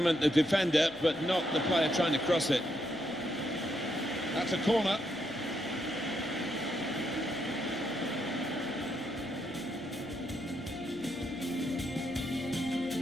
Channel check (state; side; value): noise; left; hum, 23 dB below the sound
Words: the defender, but not the player trying to cross it. That's a corner.